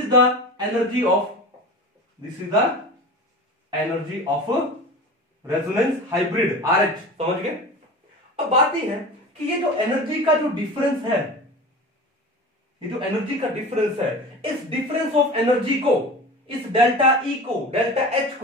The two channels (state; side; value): normal; both; correlation 0.34